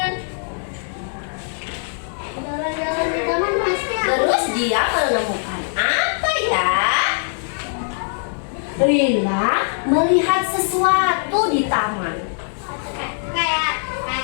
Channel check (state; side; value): silent; right; 63 dB below the other